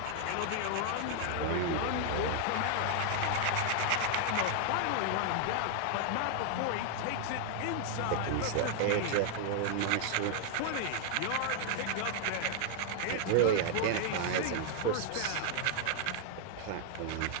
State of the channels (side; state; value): both; different; correlation 0.00